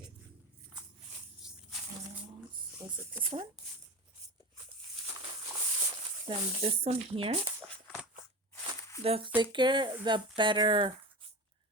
was it this one? Then this one here. The thicker, the better,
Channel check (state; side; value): normal; both; correlation 0.28